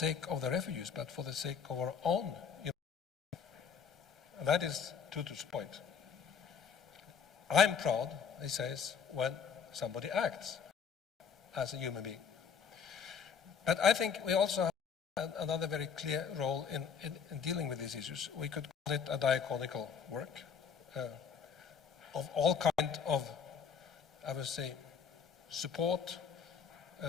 of the refugees, but for the sake of our own human. And that is Tutu's point. I'm proud, he says, when somebody acts as a human being. But I think we also have another very clear role in dealing with these issues. We could call it a diaconical work of all kinds of, I would say, support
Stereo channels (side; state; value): right; quieter; 6.6 dB